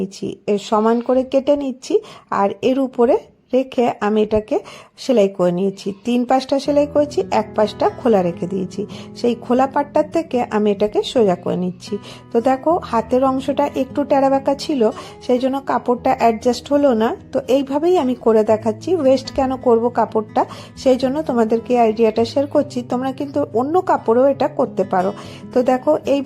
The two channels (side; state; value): both; identical; correlation 1.00